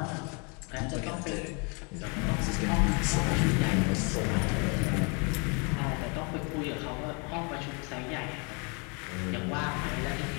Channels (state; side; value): quieter; right; 33.7 dB